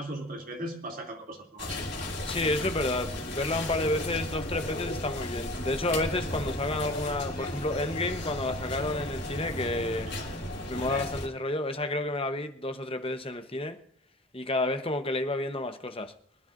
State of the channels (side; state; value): both; normal; correlation 0.42